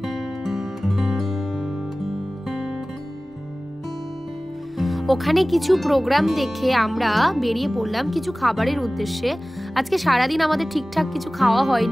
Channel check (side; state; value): both; normal; correlation 0.98